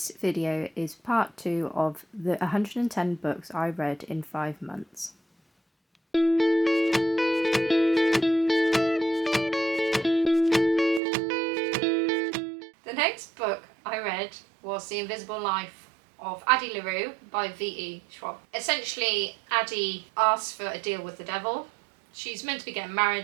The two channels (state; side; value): drops out; left; at 11.0 s